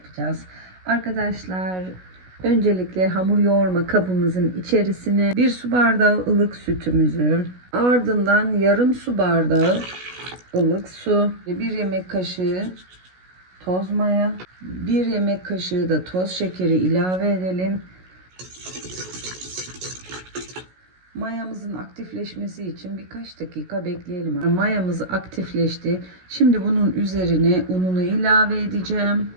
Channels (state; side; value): late; left; 16 ms